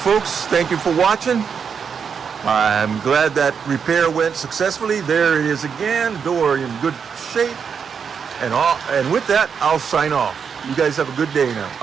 Thank you for watching. I'm glad that repair went successfully. There it is again, door in good shape. And with that, I'll sign off. You guys have a good day now.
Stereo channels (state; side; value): quieter; left; 6.6 dB